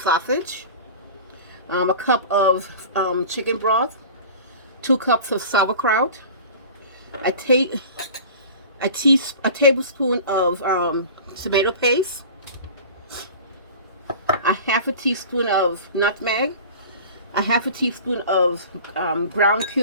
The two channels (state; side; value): inverted; both; correlation -0.38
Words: a cup of chicken broth, 2 cups of sauerkraut, a tablespoon of tomato paste, a half a teaspoon of nutmeg, a half a teaspoon of ground